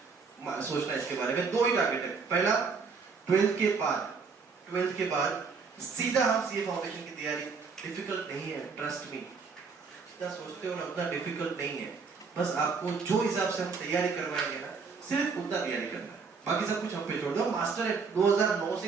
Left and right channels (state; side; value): quieter; left; 5.1 dB